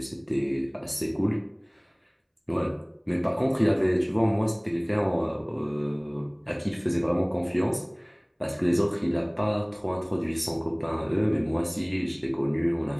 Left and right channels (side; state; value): both; identical; correlation 1.00